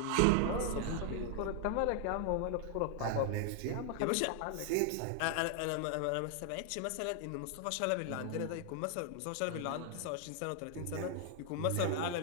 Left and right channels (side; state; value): both; different; correlation 0.00